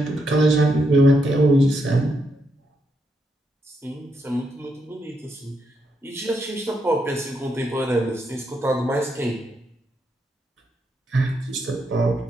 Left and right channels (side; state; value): both; normal; correlation 0.80